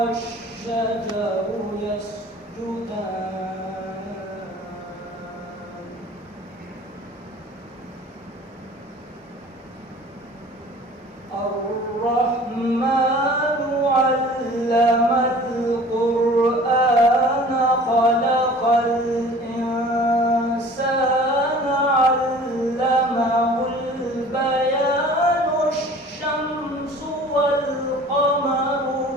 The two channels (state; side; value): normal; both; correlation 0.46